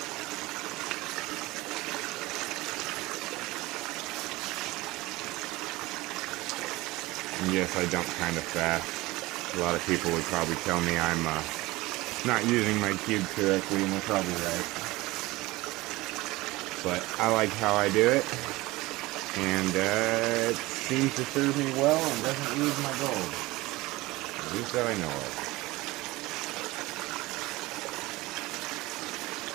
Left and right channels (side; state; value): left; quieter; 20.3 dB